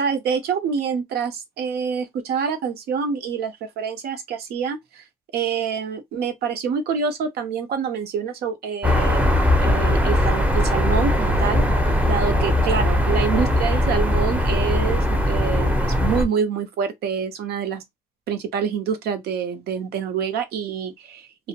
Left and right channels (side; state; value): both; normal; correlation 0.58